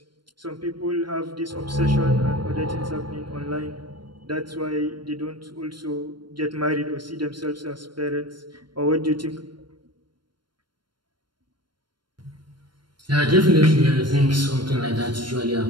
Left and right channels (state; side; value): late; left; 0.72 ms